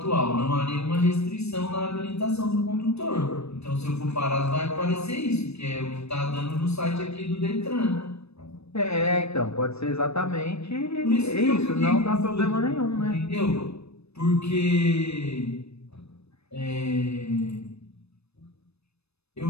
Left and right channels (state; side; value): late; right; 0.79 ms